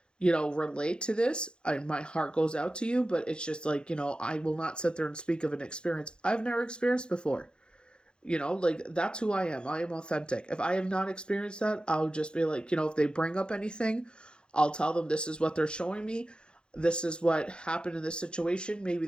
relate to this. My heart goes out to you, but it's just like, I will not sit there and speak of an experience I've never experienced before. Like that's who I am. I am authentic. If I have not experienced that, I'll just be like, if they bring up anything, I'll tell them this is what they're showing me. This is what happened in this situation. Maybe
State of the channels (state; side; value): late; right; 0.051 ms